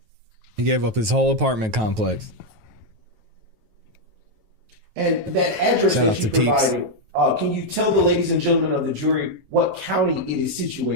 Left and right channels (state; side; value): late; left; 9.3 ms